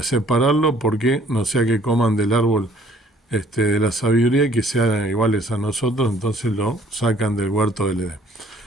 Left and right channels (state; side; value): normal; both; correlation 0.58